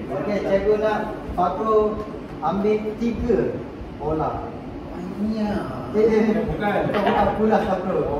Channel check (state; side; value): identical; both; correlation 1.00